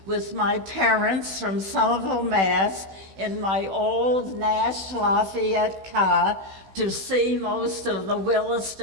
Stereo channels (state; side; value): late; left; 16 ms